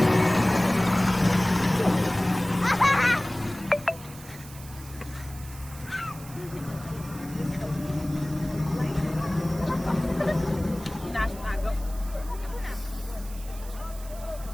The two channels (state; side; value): noise; right; hiss, 18 dB below the sound